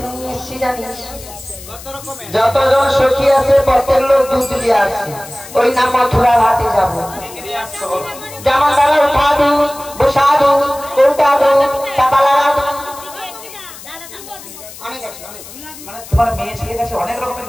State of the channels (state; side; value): noise; left; hiss, 16 dB below the sound